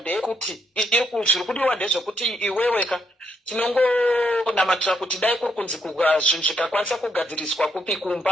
zviri kudiwa ndezvekuti iweweka tinongonamatira kuti dai kuri kunzi zvinhu zvikakwanisa kugadziriswa kupi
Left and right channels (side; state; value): both; normal; correlation 0.76